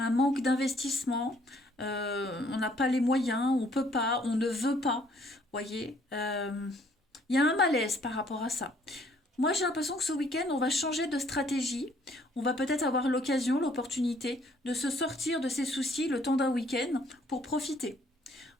manque d'investissement, on n'a pas les moyens, on peut pas, on ne veut pas, voyez, il y a un malaise par rapport à ça. Moi j'ai l'impression que ce week-end on va changer de stratégie, on va peut-être avoir l'occasion, l'opportunité de se sortir de ces soucis le temps d'un week-end pour profiter,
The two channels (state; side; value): normal; both; correlation 0.63